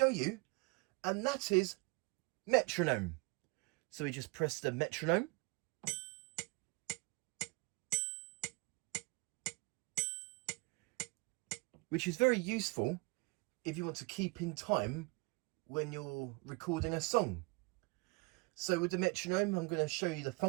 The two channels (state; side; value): quieter; left; 28.5 dB